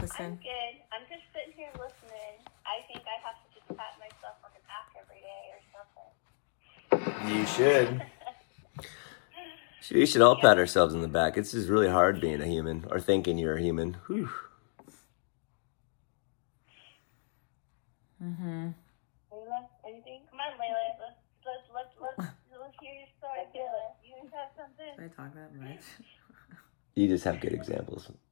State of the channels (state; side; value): silent; right; 55 dB below the other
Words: I'm good. I'm just sitting here listening. I think I have to just pat myself on the back every day or something. You should. We should all pat ourselves on the back. It's just really hard being a human, or thinking you're a human. Whew. Mm-hmm. Layla, anything? Come on, Layla. Let's hear your story, Layla. You have something? Did I talk that much? You just have good examples.